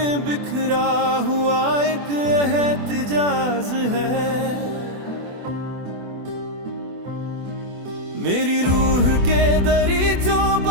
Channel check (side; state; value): left; late; 24 ms